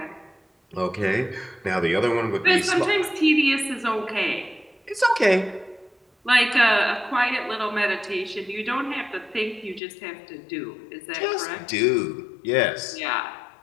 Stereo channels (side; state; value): right; drops out; at 9.8 s